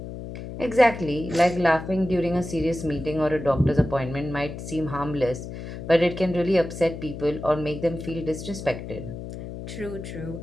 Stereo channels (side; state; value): left; noise; hum, 9 dB below the sound